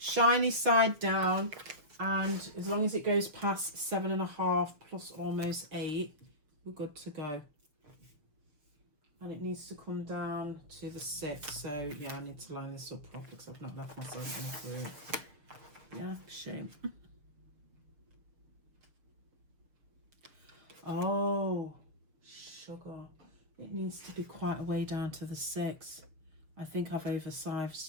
side down, and as long as it goes past 7.5 plus almost 8, we're good to go. And it needs to come down to the 6, so yeah, I need to line this up properly because I've not left myself into it. Yeah, shame. Oh, sugar. It needs to be quite a way down to the 6. I think I've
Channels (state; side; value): late; left; 6.8 ms